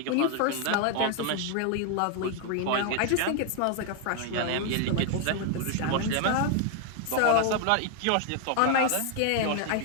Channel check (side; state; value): both; different; correlation 0.00